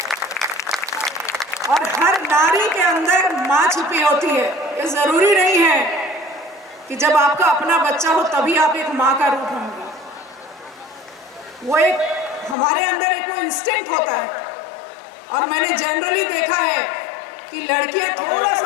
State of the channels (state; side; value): drops out; right; at 12.6 s